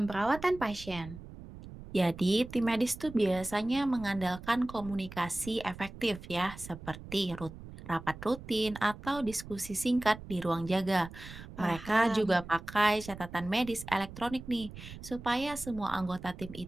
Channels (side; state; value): right; noise; rumble, 14 dB below the sound